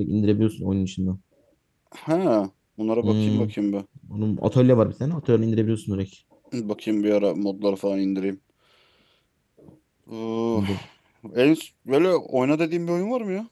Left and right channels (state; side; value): identical; both; correlation 1.00